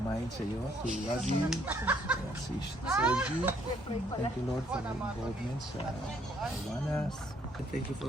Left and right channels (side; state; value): both; normal; correlation 0.67